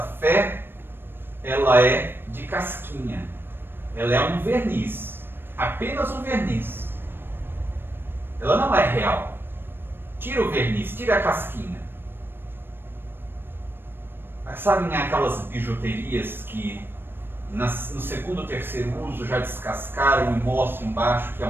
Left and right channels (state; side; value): late; left; 0.099 ms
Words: fé, ela é de casquinha. Ela é um verniz, apenas um verniz. Ela não é real. Tira o verniz, tira a casquinha. Sabem aquelas bijuterias que no segundo ou terceiro uso já descascaram e mostram embaixo que é